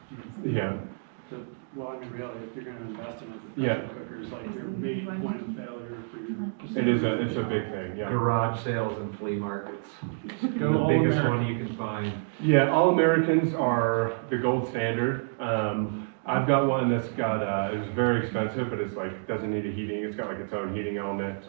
Yeah. Well, I mean, really, if you're gonna invest in a Yeah. pressure cooker, it's like your main point of failure for your. It's a big thing, yeah. Garage sales and flea markets. Go The all biggest American. one you can find. Yeah, all Americans are the gold standard. I've got one that's got, it's very expensive, but it's like, doesn't need a heating. It's got like its own heating element, it's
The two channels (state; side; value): silent; left; digital silence